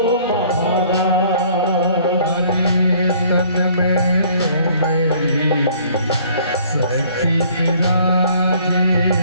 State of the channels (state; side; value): inverted; both; correlation -0.57